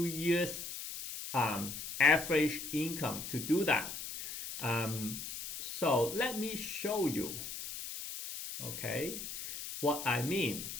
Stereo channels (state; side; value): noise; left; hiss, 8 dB below the sound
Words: years average income to do that. So let me show you, okay, what I mean.